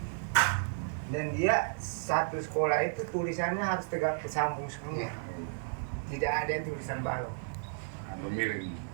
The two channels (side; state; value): left; silent; digital silence